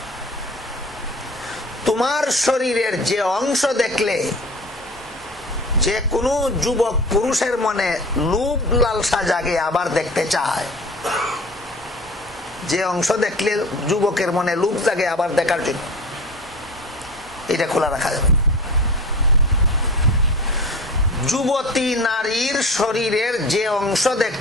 তোমার শরীরের যে অংশ দেখলে যে কোনো যুবক পুরুষের মনে লোভ লালসা জাগে, আবার দেখতে চায়, যে অংশ দেখলে যুবকের মনে লোভ জাগে আবার দেখার জন্য, এটা খোলা রাখা যাবে। যুবতী নারীর শরীরের যে অংশ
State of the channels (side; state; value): both; normal; correlation 0.37